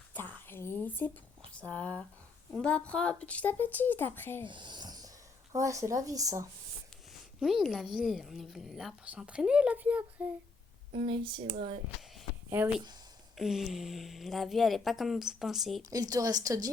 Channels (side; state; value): right; quieter; 4.1 dB